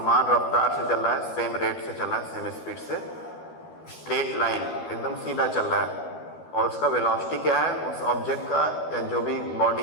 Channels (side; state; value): right; late; 13 ms